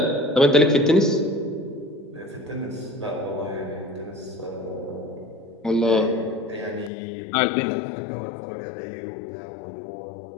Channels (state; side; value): drops out; right; at 6.9 s